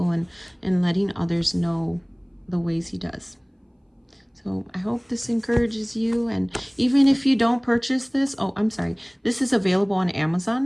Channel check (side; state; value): both; identical; correlation 1.00